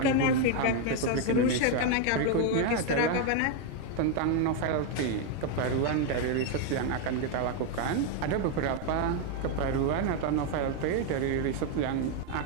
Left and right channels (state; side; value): different; both; correlation 0.01